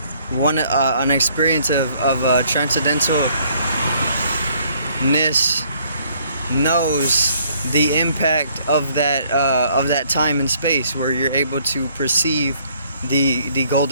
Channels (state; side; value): inverted; both; correlation -0.64